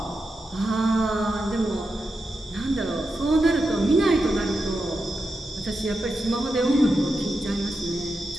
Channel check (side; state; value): both; normal; correlation 0.88